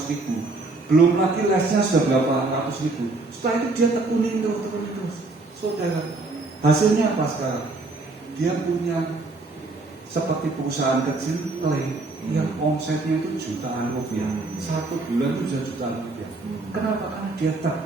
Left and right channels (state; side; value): quieter; left; 3.4 dB